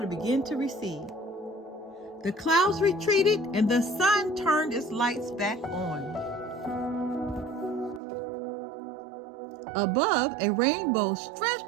began to recede. The clouds retreated and the sun turned its lights back on. Above, a rainbow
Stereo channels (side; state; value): left; drops out; at 8.0 s